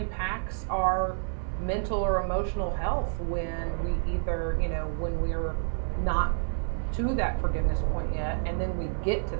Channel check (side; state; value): left; silent; digital silence